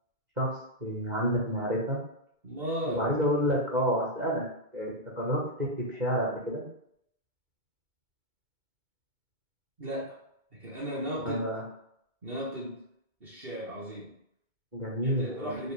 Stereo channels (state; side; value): late; left; 2.2 ms